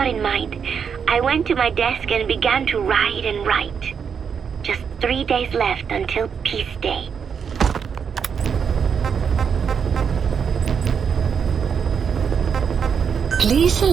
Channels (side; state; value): left; quieter; 6.9 dB